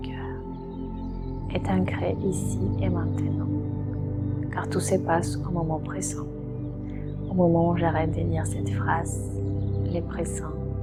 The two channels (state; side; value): identical; both; correlation 1.00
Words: cœur, et t'ancrer ici et maintenant, car tout se passe au moment présent, au moment où j'arrête de dire cette phrase, les présents,